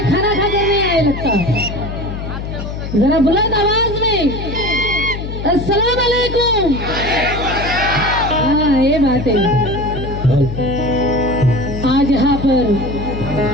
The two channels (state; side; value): noise; left; hum, 7 dB below the sound